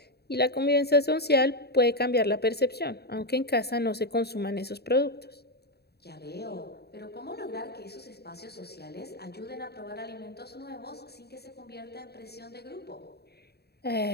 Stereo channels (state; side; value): late; right; 0.47 ms